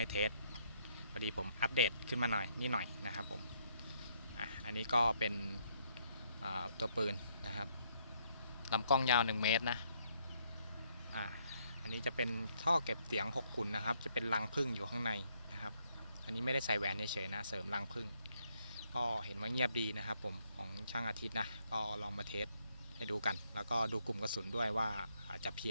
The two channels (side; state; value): both; inverted; correlation -0.72